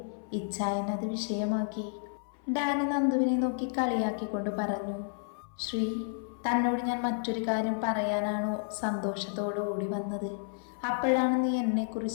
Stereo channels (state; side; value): silent; right; 57 dB below the other